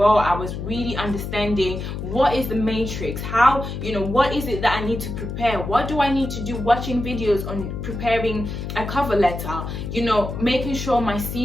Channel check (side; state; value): left; noise; hum, 6 dB below the sound